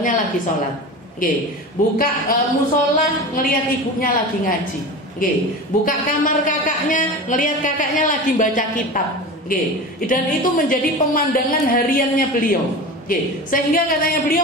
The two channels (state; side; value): normal; both; correlation 0.30